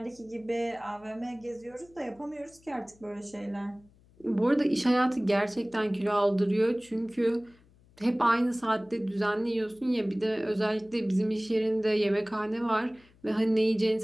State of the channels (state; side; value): noise; left; hum, 29 dB below the sound